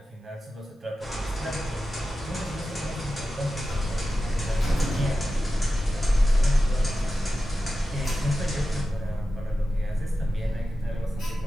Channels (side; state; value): both; normal; correlation 0.93